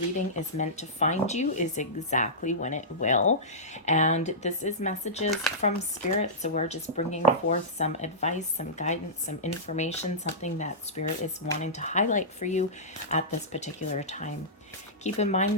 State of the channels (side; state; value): both; normal; correlation -0.16